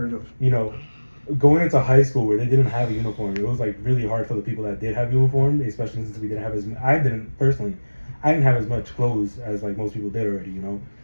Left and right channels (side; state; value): both; inverted; correlation -1.00